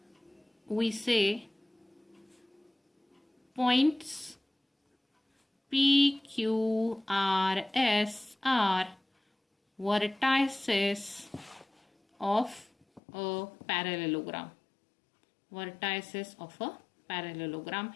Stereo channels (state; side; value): drops out; right; at 13.0 s